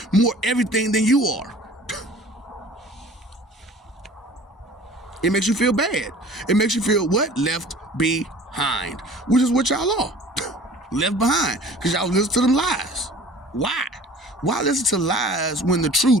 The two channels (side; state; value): both; normal; correlation 0.46